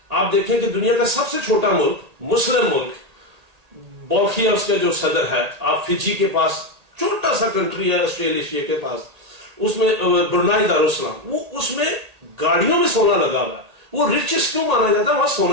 آپ دیکھیں کہ دنیا کا سب سے چھوٹا ملک, مسلم ملک, بولکھیا اس کا جو صدر ہے, آپ فجی کے پاس چھوٹا سا کنٹری ہے آسٹریلیشیا کے پاس, اس میں برنائی دارالسلام, وہ اس میں گاڑیوں میں سونا لگا ہوا ہے. وہ ریچسٹ کیوں مانا جاتا ہے, وہاں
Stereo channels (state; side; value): late; left; 1.8 ms